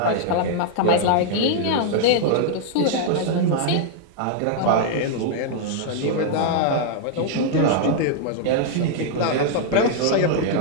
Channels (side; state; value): both; different; correlation -0.01